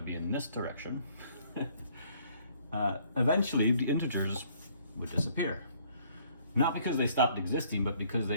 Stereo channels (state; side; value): inverted; both; correlation -0.62